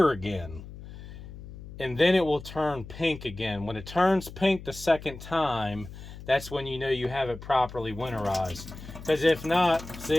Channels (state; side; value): noise; left; hum, 14 dB below the sound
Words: again. And then it will turn pink again. When it turns pink the second time, that's when you know you have it properly winterized. Because if not,